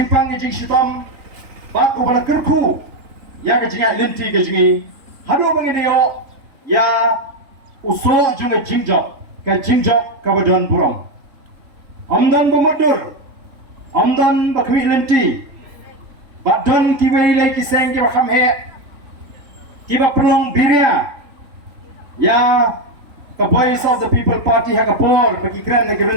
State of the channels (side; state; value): left; late; 3.4 ms